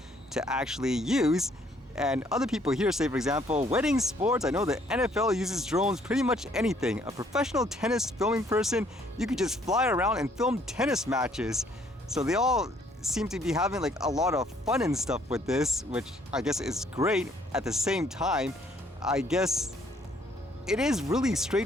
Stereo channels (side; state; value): both; normal; correlation 0.64